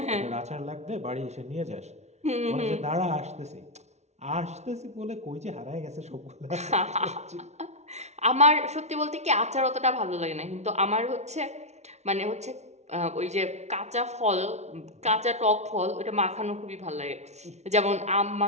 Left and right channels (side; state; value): left; late; 0.32 ms